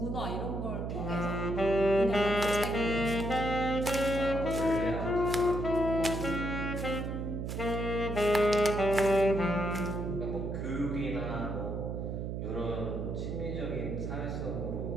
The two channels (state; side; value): noise; right; hum, 4 dB below the sound